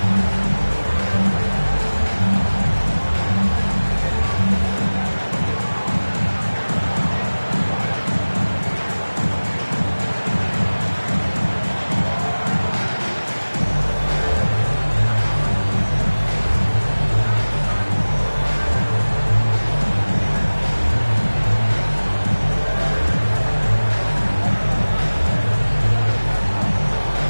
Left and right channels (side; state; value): both; inverted; correlation -1.00